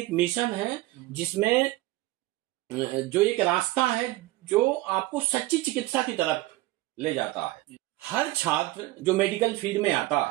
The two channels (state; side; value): quieter; left; 18.1 dB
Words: मिशन है, जिसमें जो एक रास्ता है जो आपको सच्ची चिकित्सा की तरफ ले जाता है। हर छात्र जो मेडिकल फील्ड में आता